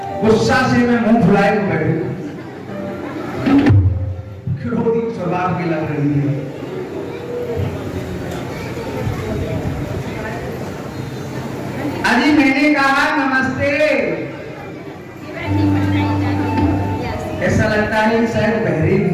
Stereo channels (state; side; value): identical; both; correlation 1.00